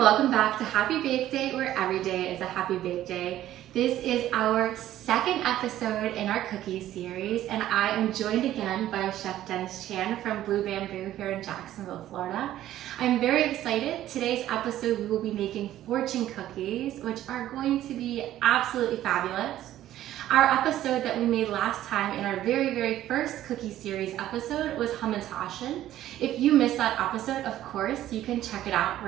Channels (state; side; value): quieter; left; 13.1 dB